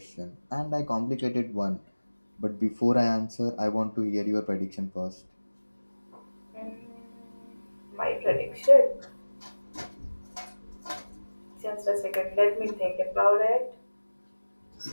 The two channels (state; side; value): inverted; both; correlation -1.00